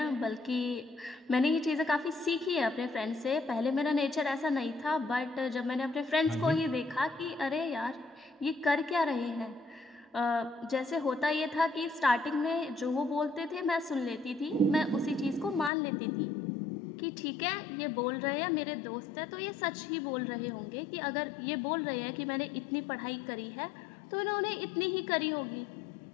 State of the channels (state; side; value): drops out; right; at 15.7 s